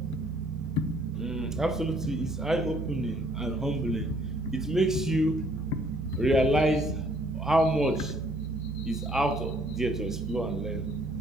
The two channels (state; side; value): normal; both; correlation 0.62